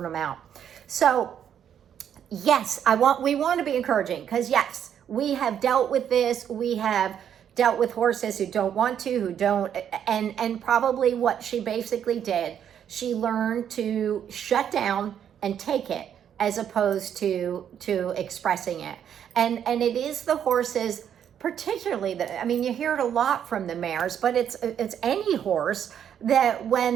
them out. So yes, we want to be encouraging, because yes, we have dealt with this. We have dealt with horses who don't want to, who don't, and probably what she basically did, she learned to shut down and take it as opposed to expressing it. And it is the horses, particularly you hear it a lot from the mares, but it's any horse that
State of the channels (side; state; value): left; quieter; 9.1 dB